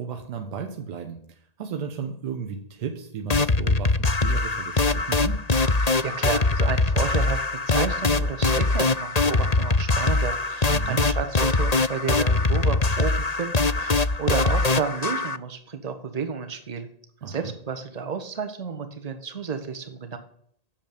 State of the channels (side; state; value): right; late; 1.8 ms